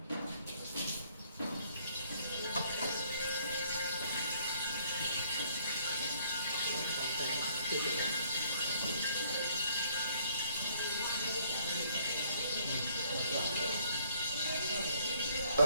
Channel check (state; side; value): inverted; both; correlation -0.64